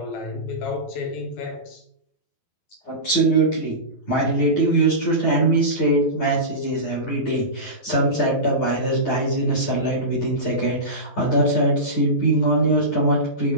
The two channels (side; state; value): right; late; 12 ms